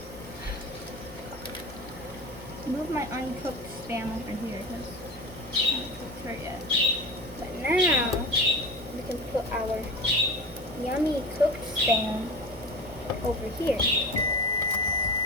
move my uncooked Spam over here because I haven't cooked her yet. But now we can put our yummy cooked Spam over here.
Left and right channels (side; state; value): both; normal; correlation 0.30